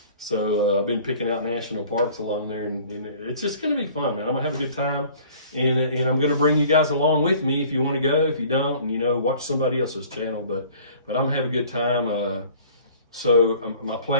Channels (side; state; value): both; inverted; correlation -0.51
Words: So I've been picking out national parks along there, and it's just gonna be fun, man. I'm gonna have a good time. And I'm going to bring you guys along with me if you want to go. If you don't, watch somebody else's channel. But I'm going to have a good time. So my